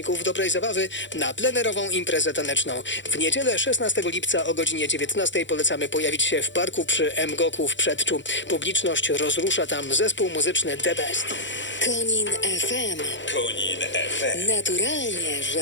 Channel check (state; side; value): late; right; 0.54 ms